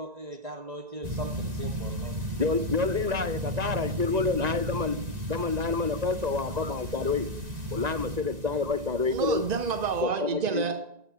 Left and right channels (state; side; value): late; left; 1.9 ms